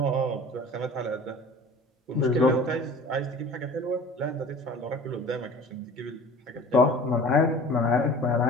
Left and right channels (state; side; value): normal; both; correlation 0.43